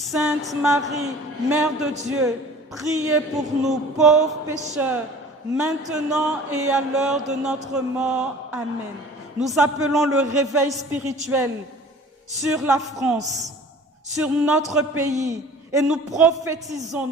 Marie, Mère de Dieu, priez pour nous, pauvres pécheurs, maintenant et à l'heure de notre mort. Amen. Nous appelons le réveil spirituel sur la France, sur notre pays, et nous prophétisons,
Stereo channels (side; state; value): both; normal; correlation 0.45